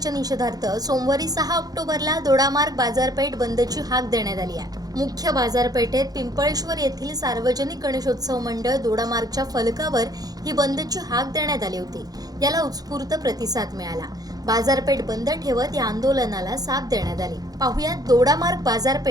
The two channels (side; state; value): left; late; 0.18 ms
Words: निषेधार्थ सोमवारी 6 ऑक्टोबरला दोडामार्ग बाजारपेठ बंदची हाक देण्यात आली आहे। मुख्य बाजारपेठेत पिंपळेश्वर येथील सार्वजनिक गणेशोत्सव मंडळ दोडामार्गच्या फलकावर ही बंदची हाक देण्यात आली होती। याला उत्स्फूर्त प्रतिसाद मिळाला। बाजारपेठ बंद ठेवत या आंदोलनाला साथ देण्यात आली। पाहुयात दोडामार्ग